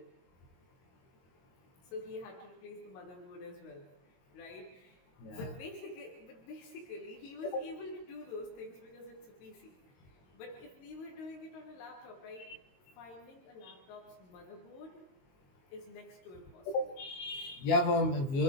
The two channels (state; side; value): late; right; 22 ms